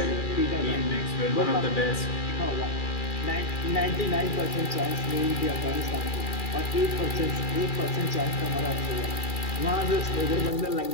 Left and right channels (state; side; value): late; right; 2.4 ms